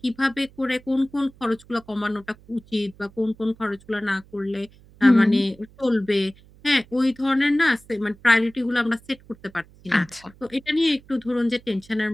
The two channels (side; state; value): right; noise; hum, 26 dB below the sound